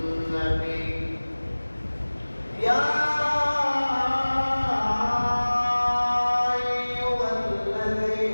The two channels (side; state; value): both; inverted; correlation -1.00